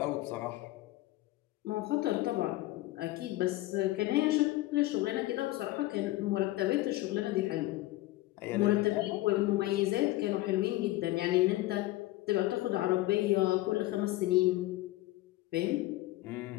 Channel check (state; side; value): quieter; right; 17.5 dB